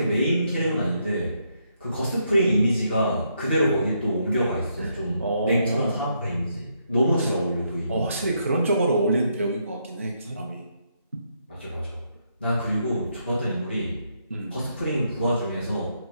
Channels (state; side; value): inverted; both; correlation -0.77